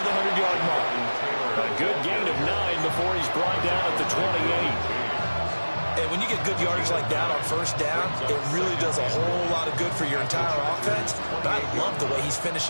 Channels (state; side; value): inverted; both; correlation -1.00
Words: the 100-yard mark. A good gain of 9 before he's brought down at the 28. And when you get good yardage like that on 1st down, it really does a whole lot of good for your entire offense. But I love the way he's